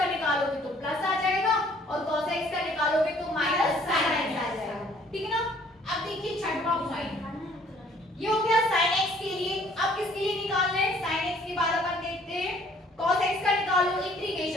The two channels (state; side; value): normal; both; correlation 0.59